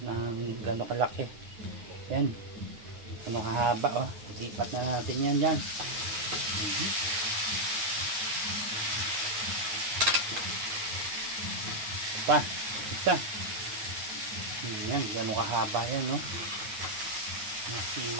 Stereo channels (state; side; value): late; left; 9.6 ms